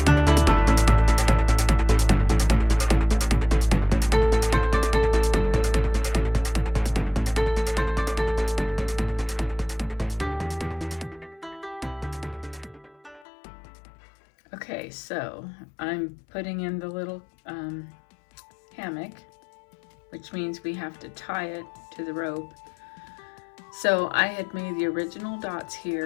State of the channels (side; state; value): right; drops out; at 13.2 s